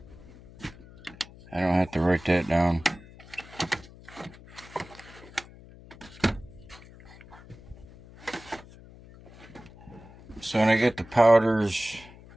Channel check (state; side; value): noise; left; hum, 20 dB below the sound